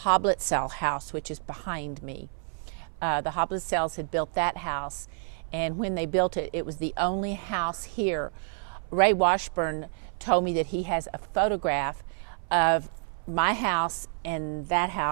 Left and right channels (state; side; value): silent; left; 59 dB below the other